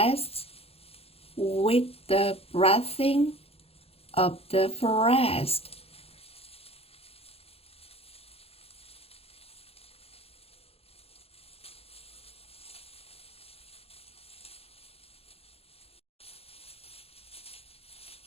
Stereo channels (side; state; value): right; late; 0.29 ms